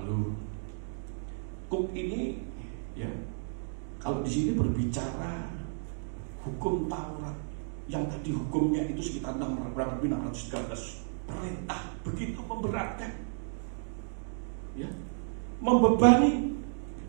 kuk ini ya, kalau di sini berbicara hukum Taurat yang tadi hukumnya itu sekitar 613 perintah, begitu memberatkan, ya, membebani.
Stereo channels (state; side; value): silent; left; digital silence